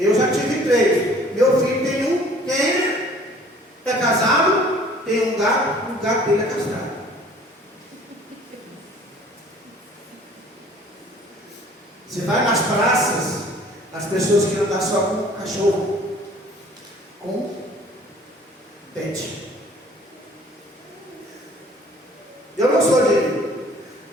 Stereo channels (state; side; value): normal; both; correlation 0.52